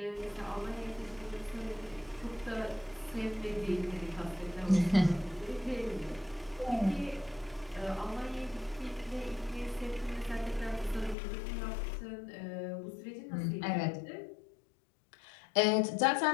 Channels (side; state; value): right; drops out; at 11.2 s